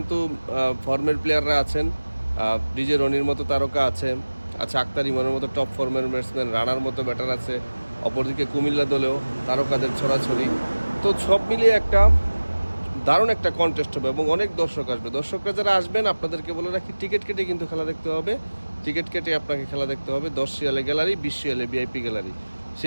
ফর্মের প্লেয়াররা আছেন, ডিজে রনির মতো তারকা আছে, আক্তার ইমনের মতো টপ ফর্মের ব্যাটসম্যান, রানার মতো ব্যাটার আছে। অপরদিকে কুমিল্লা দলেও তারকাদের ছড়াছড়ি। তো সব মিলিয়ে একটা দারুণ একটা কন্টেস্ট হবে এবং অনেক দর্শক আসবে। দর্শকরা যারা আসবেন আপনাদেরকে বলে রাখি, টিকিট কেটে কিন্তু খেলা দেখতে হবে। টিকিট কেটে আপনাকে খেলা দেখতে হবে। 10 রিয়ালে গ্যালারি, 20 রিয়ালে ভিআইপি গ্যালারি,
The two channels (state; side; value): inverted; both; correlation -1.00